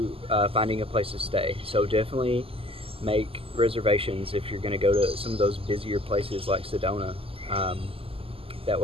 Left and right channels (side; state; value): left; late; 0.27 ms